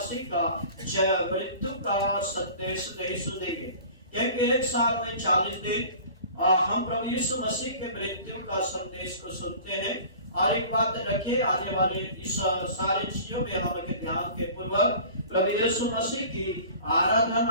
का मृत्यु का संदेश नहीं सुनेंगे, क्योंकि एक साल में 40 दिन हम प्रभु यीशु मसीह के मृत्यु का संदेश को सुनते हैं। और एक बात रखिए, आने वाले इस सारी चीजों में हम ध्यान के पूर्वक प्रभु यीशु मसीह की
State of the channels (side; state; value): both; inverted; correlation -0.43